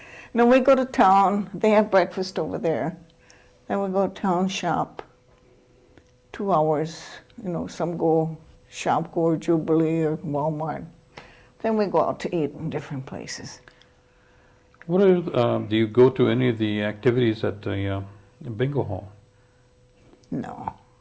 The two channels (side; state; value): both; identical; correlation 1.00